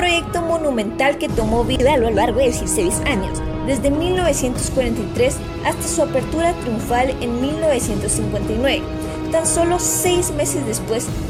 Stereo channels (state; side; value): identical; both; correlation 1.00